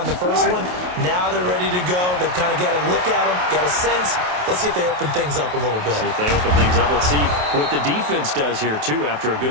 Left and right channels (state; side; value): late; left; 28 ms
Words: the first one. Now they're ready to go. They've kind of got a look at them, got a sense. Let's see if they open things up a little bit. See if they open things up. Let's see what the defense does here, too, after a